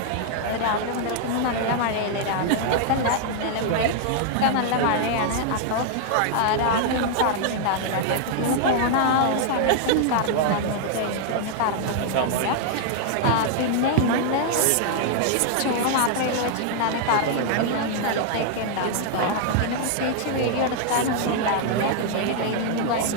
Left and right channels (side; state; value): both; different; correlation -0.01